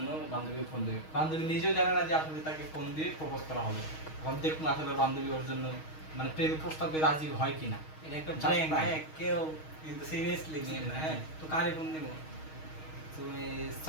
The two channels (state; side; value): late; right; 6.4 ms